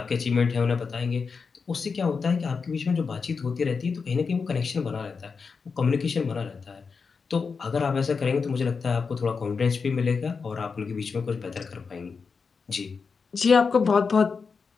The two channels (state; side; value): quieter; right; 5.2 dB